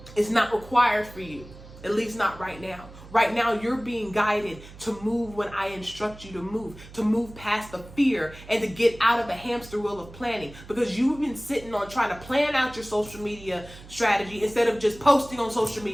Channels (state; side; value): noise; right; hum, 18 dB below the sound